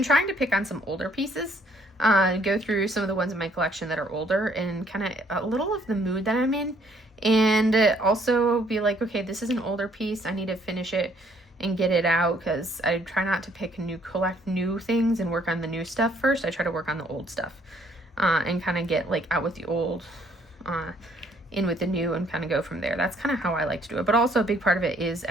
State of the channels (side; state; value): both; normal; correlation 0.65